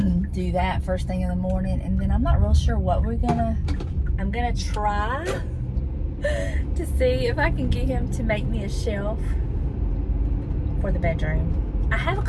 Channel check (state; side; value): identical; both; correlation 1.00